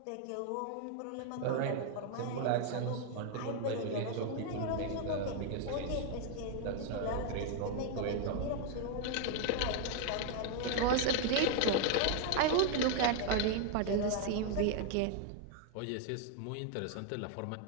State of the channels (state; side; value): different; both; correlation 0.00